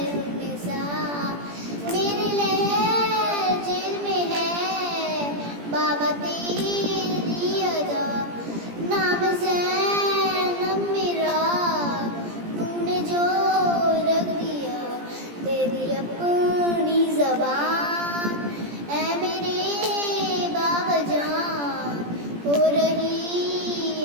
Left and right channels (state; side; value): late; left; 17 ms